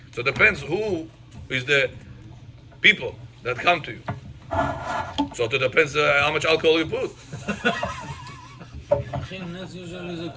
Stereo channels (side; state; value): both; identical; correlation 1.00